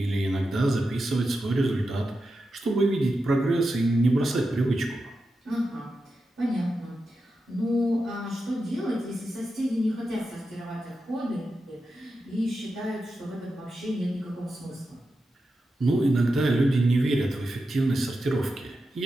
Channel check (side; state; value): both; normal; correlation 0.90